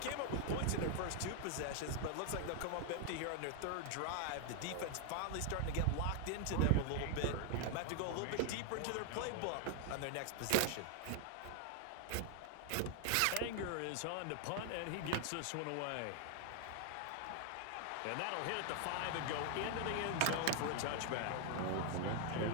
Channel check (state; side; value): different; both; correlation 0.00